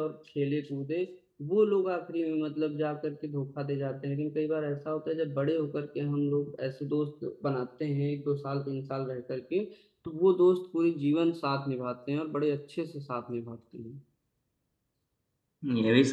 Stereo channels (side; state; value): both; identical; correlation 1.00